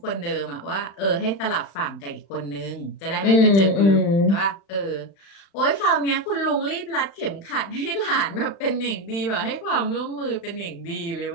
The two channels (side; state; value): right; late; 35 ms